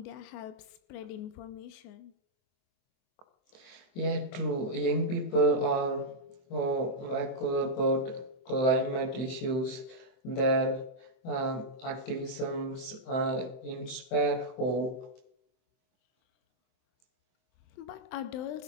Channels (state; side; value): late; right; 23 ms